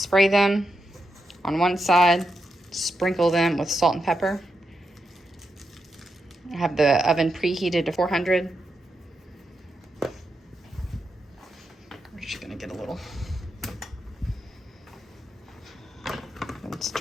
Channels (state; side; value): normal; both; correlation 0.85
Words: them on one side, sprinkle them with salt and pepper. I have the oven preheated to 400. We're just gonna get a little, and